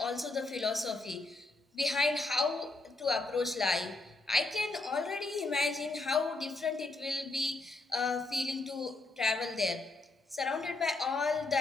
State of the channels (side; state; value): right; quieter; 3.1 dB